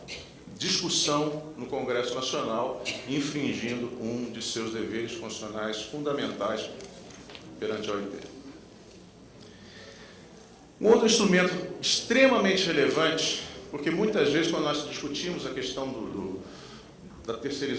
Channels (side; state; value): both; identical; correlation 1.00